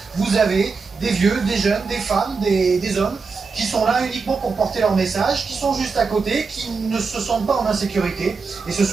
vous avez des vieux, des jeunes, des femmes, des hommes qui sont là uniquement pour porter leur message, qui sont juste à côté, qui ne se sentent pas en insécurité. Et ce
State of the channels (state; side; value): quieter; left; 4.7 dB